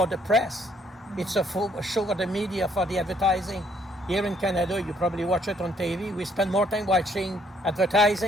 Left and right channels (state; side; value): normal; both; correlation 0.66